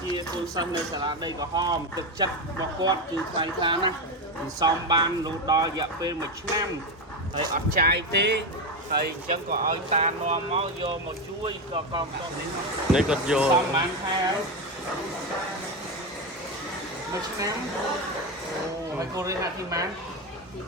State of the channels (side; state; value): both; normal; correlation 0.13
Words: ជាកូនសិស្សនៅសាលាដីក្រហមទឹកចិត្តរបស់គាត់គឺថ្លៃថ្លាណាស់សំបានរហូតដល់រយៈពេល1ឆ្នាំហើយអត់ចាយទេហើយអញ្ចឹងក៏ឲ្យតានាំមកយកមកជួយក៏កងតនេះគាត់យកសំបានខែ1ឆ្នាំហើយគូរៀនទីម៉ាន